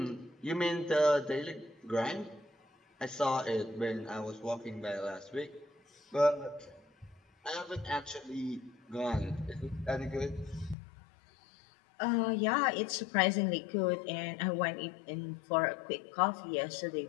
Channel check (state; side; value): drops out; right; at 10.8 s